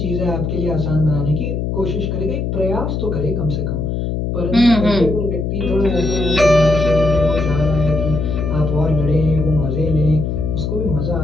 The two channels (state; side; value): noise; left; hum, 1 dB below the sound